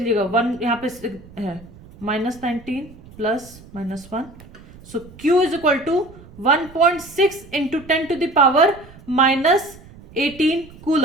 1 यहां पे है, -19 plus -1, so Q is equal to 1.6 into 10⁻⁻18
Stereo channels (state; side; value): noise; right; rumble, 21 dB below the sound